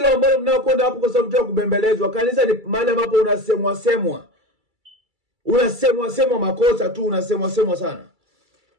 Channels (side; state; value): left; late; 2.3 ms